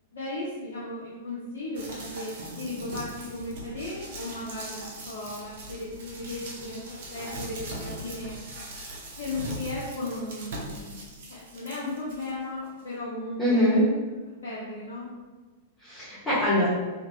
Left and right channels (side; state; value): both; normal; correlation -0.12